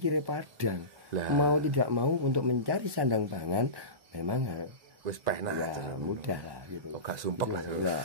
padang, mau tidak mau untuk mencari sandang pangan memang wis pena ya, mudah lah gitu. Oh, gak sumpek lah.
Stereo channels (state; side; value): late; left; 1.1 ms